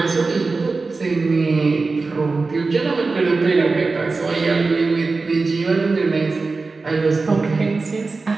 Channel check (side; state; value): left; quieter; 3.9 dB